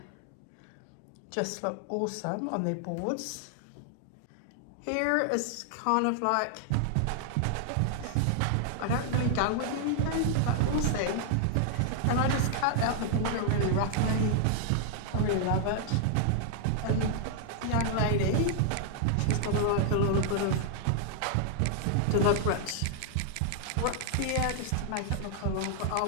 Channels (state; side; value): different; both; correlation -0.01